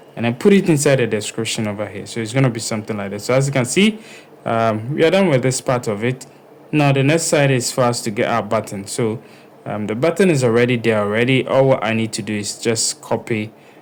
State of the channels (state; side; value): identical; both; correlation 1.00